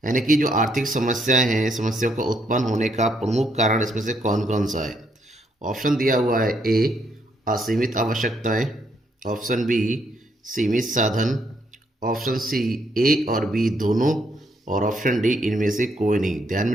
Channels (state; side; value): normal; both; correlation 0.73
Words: यानी कि जो आर्थिक समस्याएं हैं, समस्याओं का उत्पन्न होने का प्रमुख कारण इसमें से कौन कौन सा है? ऑप्शन दिया हुआ है, ए असीमित आवश्यकताएं, ऑप्शन बी सीमित साधन, ऑप्शन सी ए और बी दोनों, और ऑप्शन डी इनमें से कोई नहीं। ध्यान में